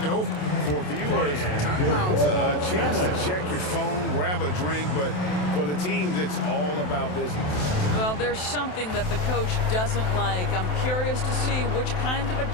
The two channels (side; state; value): right; late; 27 ms